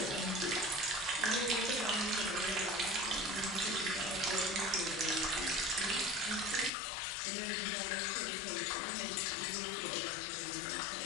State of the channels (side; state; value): right; drops out; at 6.7 s